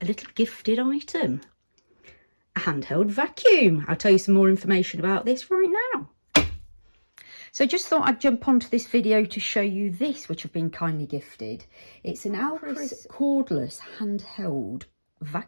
a little gifted item. A handheld vacuum. I'll tell you some more information about this right now. So just thought I'd jump onto this video to show you this, which I've been kindly gifted. It's an ALACRIS cordless handheld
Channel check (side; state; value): both; inverted; correlation -1.00